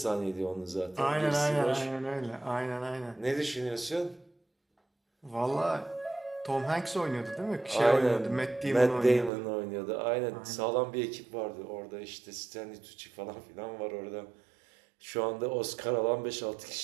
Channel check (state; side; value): drops out; left; at 9.3 s